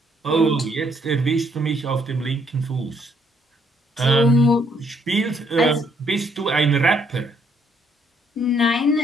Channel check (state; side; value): normal; both; correlation 0.69